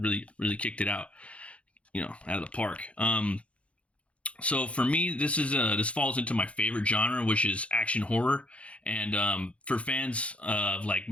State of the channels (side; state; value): right; late; 0.062 ms